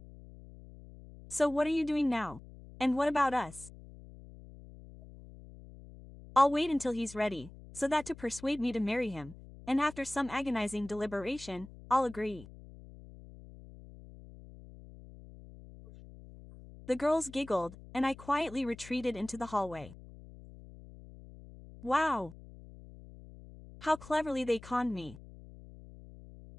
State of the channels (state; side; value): noise; left; hum, 18 dB below the sound